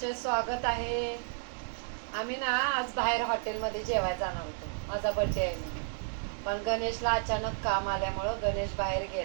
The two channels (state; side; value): silent; left; digital silence